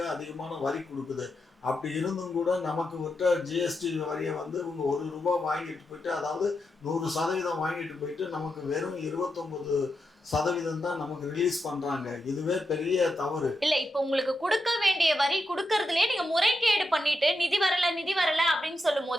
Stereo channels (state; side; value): normal; both; correlation 0.86